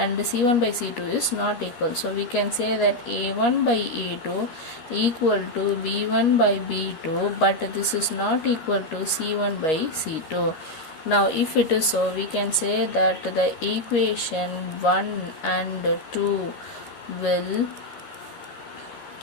c1 by c2 is not equal, so we can say that a1 by a2 equal to b1 by b2, but this is not equal to c1 by c2. Now if it is so, we can say that the equation 1 and 2 will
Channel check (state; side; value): late; right; 13 ms